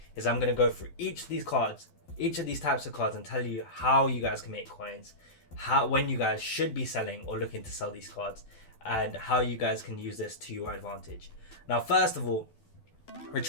is I'm going to go through each of these cards, each of these types of cards, and tell you how you guys can make coins, when you guys should be selling or looking to sell these cards, and how you guys can use this to your advantage. Now first of all,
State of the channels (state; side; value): late; right; 12 ms